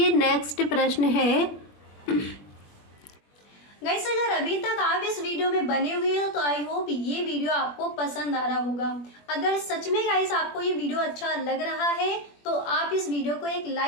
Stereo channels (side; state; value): right; late; 21 ms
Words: नेक्स्ट प्रश्न है गाइस अगर अभी तक आप इस वीडियो में बने हुए हो तो आई होप ये वीडियो आपको पसंद आ रहा होगा। अगर सच में गाइस आपको ये वीडियो अच्छा लग रहा है तो आप इस वीडियो को एक